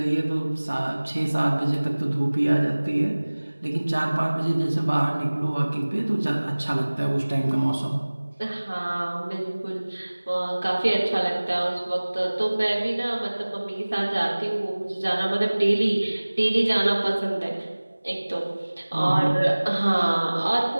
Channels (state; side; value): inverted; both; correlation -1.00